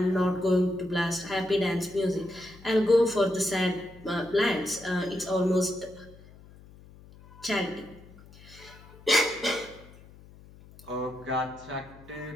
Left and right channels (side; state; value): left; noise; hum, 22 dB below the sound